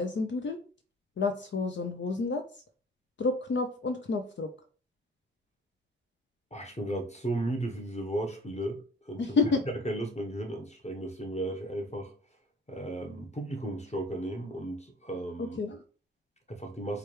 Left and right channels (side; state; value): both; normal; correlation 0.48